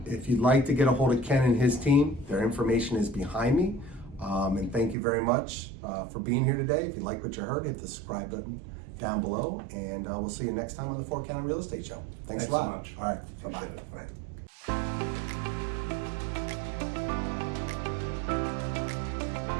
you. if you'd like to get a hold of Ken and his team, their information is behind me. And thank you very much for being here today. If you like what you heard, hit the subscribe button down below, and we'll see you next time on the 4 County Real Estate Show. Thanks a Thanks lot. so much. All right. Bye-bye. Appreciate it. Bye.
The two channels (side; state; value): left; drops out; at 5.0 s